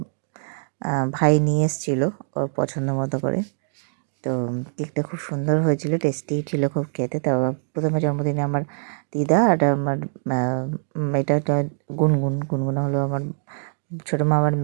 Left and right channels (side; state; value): left; silent; digital silence